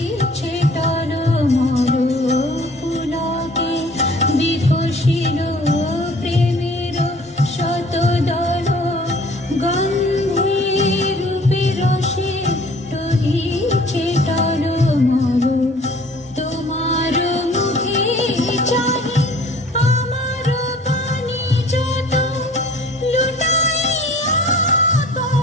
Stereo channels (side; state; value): both; normal; correlation 0.51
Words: টলমল। পুলকে বিকশিল প্রেমের শতদল, গন্ধের রূপে রসে টলিছে টলমল। তোমার মুখে চাহি আমার পানি যত, লুটাইয়া